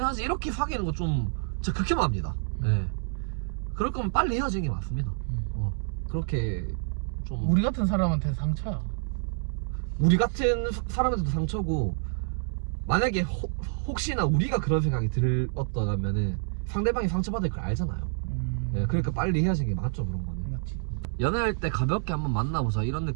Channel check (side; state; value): left; silent; digital silence